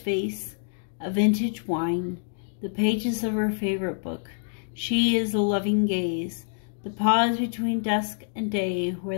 a vintage wine, the pages of her favorite book. She is a loving gaze, the pause between dusk and day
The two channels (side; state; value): right; silent; digital silence